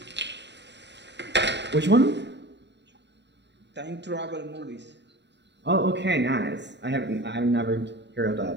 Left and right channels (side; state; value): left; late; 0.51 ms